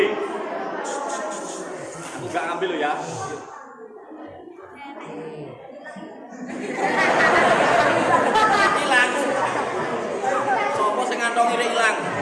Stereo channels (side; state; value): both; identical; correlation 1.00